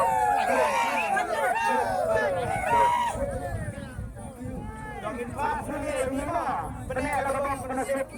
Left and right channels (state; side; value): identical; both; correlation 1.00